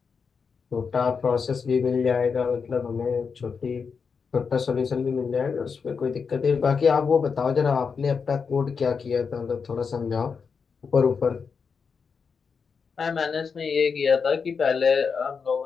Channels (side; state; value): right; quieter; 5.7 dB